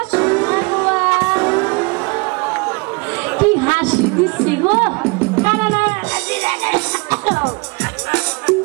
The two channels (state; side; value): quieter; left; 28.7 dB